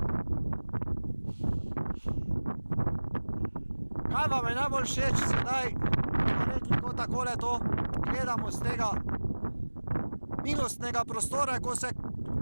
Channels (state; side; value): inverted; both; correlation -1.00